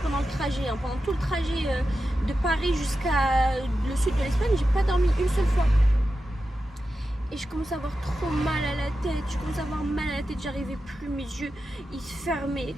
pendant le trajet. Hein. Pendant tout le trajet de Paris jusqu'à le sud de l'Espagne, j'ai pas dormi une seule fois. Et je commence à avoir trop mal à la tête, j'arrivais plus, mes yeux ils se fermaient.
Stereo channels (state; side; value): normal; both; correlation 0.91